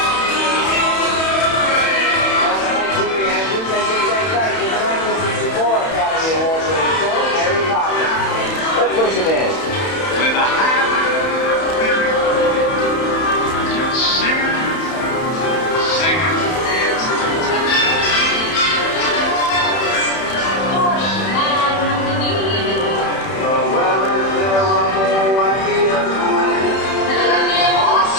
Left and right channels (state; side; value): late; right; 31 ms